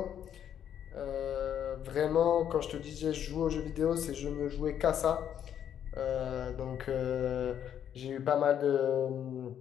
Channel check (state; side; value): quieter; right; 9.5 dB